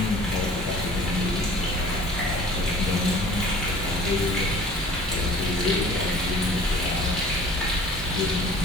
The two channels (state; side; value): normal; both; correlation 0.48